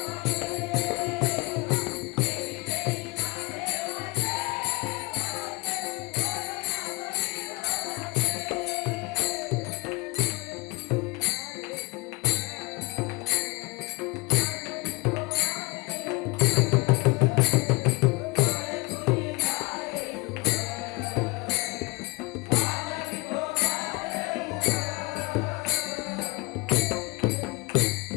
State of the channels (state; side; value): quieter; right; 25.4 dB